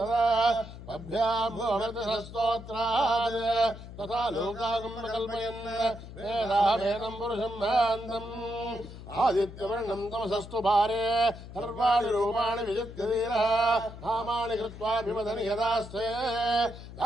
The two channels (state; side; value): noise; left; hum, 14 dB below the sound